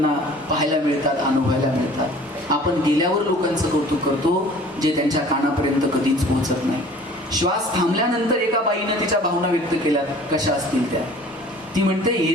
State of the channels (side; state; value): both; normal; correlation 0.48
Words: पाहायला मिळतात, अनुभवायला मिळतात. आपण गेल्यावर लोकांचं कौतुक करतो जे त्यांच्या कानापर्यंत कधीच पोहोचत नाही. श्वास थांबल्यानंतर एका बाईनं तिच्या भावना व्यक्त केल्यात, कशा असतील त्या. ती म्हणते,